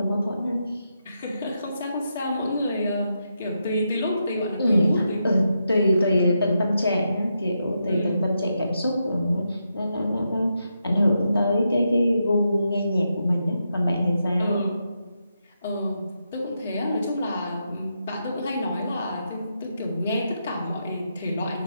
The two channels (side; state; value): both; inverted; correlation -0.84